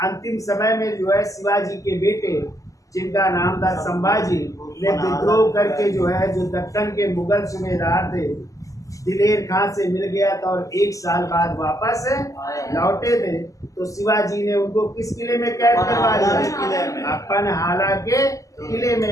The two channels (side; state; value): right; late; 0.16 ms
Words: अंतिम समय में जो है शिवाजी के बेटे जिनका नाम था संभाजी ने विद्रोह करके जो है जो दक्कन के मुगल सूबेदार थे दिलेर खां से मिल गया था और 1 साल बाद वापस लौटे थे। तो शिवाजी ने उनको किस किले में कैद करवा लिया? पनहाला के किले